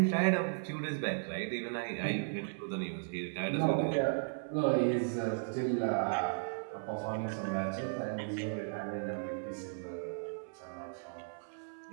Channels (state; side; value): silent; left; 54 dB below the other